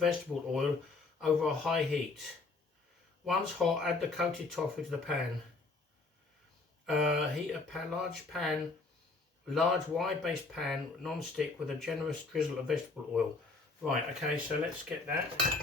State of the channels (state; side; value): quieter; right; 3.7 dB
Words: oil over a high heat. Once hot, add the coated tofu to the pan. Heat a large wide-based pan, non-stick, with a generous drizzle of vegetable oil. Right, okay, so let's get that